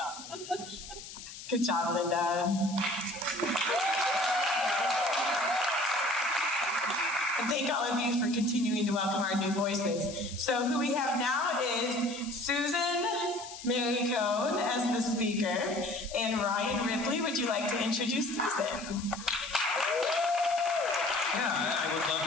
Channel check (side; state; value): left; noise; hiss, 13 dB below the sound